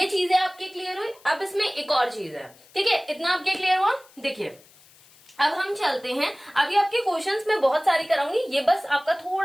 चीजें आपके क्लियर हुई। अब इसमें एक और चीज है, ठीक है, इतना आपके क्लियर हुआ। देखिए अब हम चलते हैं, अभी आपके क्वेश्चंस में बहुत सारे कराऊंगी, ये बस आपका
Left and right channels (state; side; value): noise; left; hiss, 27 dB below the sound